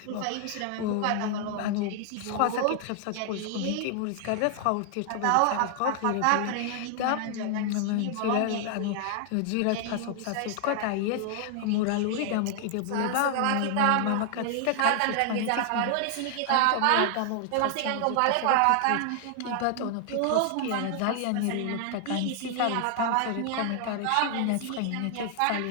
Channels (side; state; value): both; different; correlation 0.00